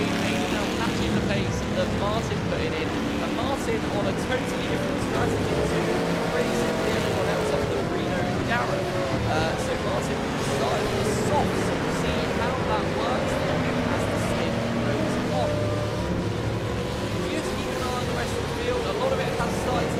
Aidan now matching the pace that Martin putting in. And Martin on a totally different strategy to racing with everyone else up the Reno and Garrett. So Martin started on the soft, so we'll see how that works for him as the stint goes on. Just keep an eye on the rest of the field. A lot of it has started to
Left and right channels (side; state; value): both; identical; correlation 1.00